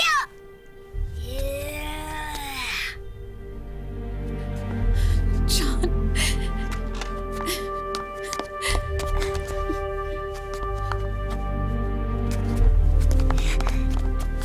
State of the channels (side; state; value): both; identical; correlation 1.00